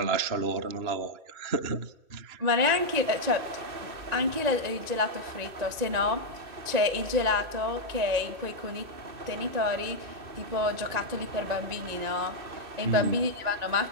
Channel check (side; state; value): left; late; 1.9 ms